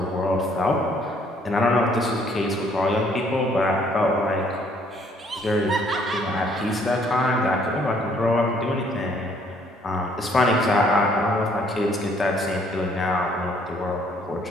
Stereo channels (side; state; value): both; normal; correlation 0.64